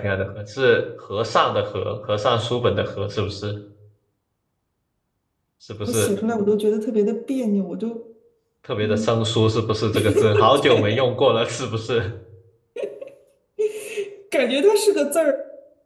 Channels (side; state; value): both; identical; correlation 1.00